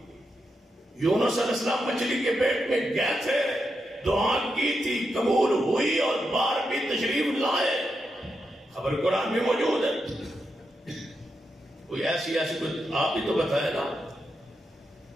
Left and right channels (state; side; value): normal; both; correlation 0.85